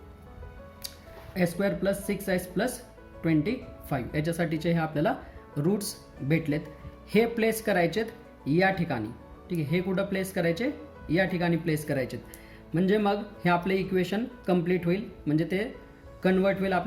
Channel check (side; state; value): both; identical; correlation 1.00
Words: S² प्लस 6S प्लस 25 याच्यासाठीचे हे आपल्याला रूट्स भेटलेत. हे प्लेस करायचेत या ठिकाणी, ठीक आहे. हे कुठं प्लेस करायचे या ठिकाणी प्लेस करायचेत. म्हणजे मग हे आपले इक्वेशन कंप्लीट होईल, म्हणजे ते कन्वर्ट होईल,